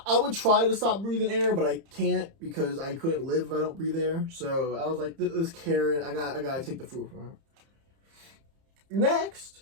I would try to stop breathing air, but I can't because I couldn't live if I don't breathe air. So I was like, this Karen, I gotta take the fruit from her. Next,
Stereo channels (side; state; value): left; late; 30 ms